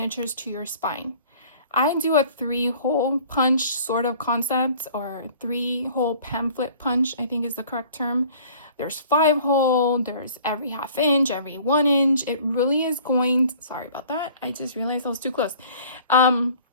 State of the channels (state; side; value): inverted; both; correlation -0.50